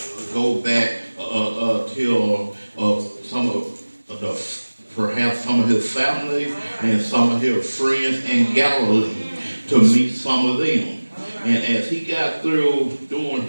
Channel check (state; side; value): inverted; both; correlation -1.00